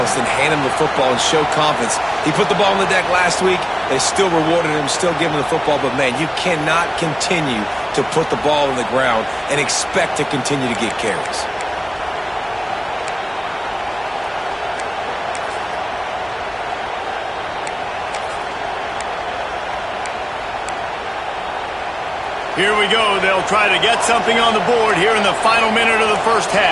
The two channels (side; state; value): both; identical; correlation 1.00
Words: and hand him the football and show confidence. He put the ball on the deck last week. They still rewarded him, still giving him the football. But, man, you cannot continue to put the ball on the ground and expect to continue to get carries. Here we go. They'll try to get something on the board here in the final minute of the first